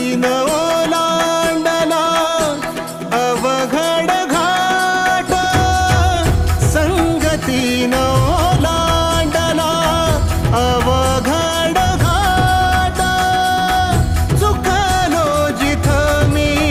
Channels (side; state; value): both; identical; correlation 1.00